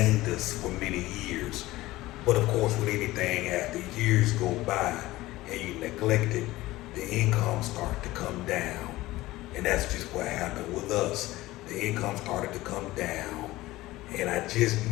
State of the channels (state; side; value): quieter; right; 17.9 dB